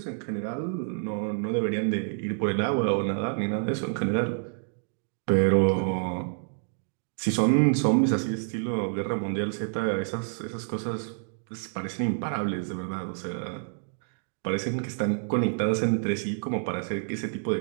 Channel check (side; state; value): left; silent; digital silence